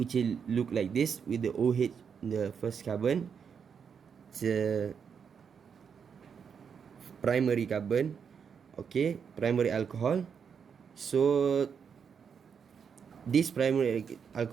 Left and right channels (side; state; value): left; quieter; 6.8 dB